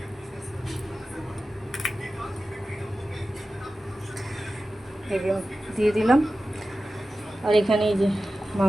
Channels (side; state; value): both; normal; correlation 0.94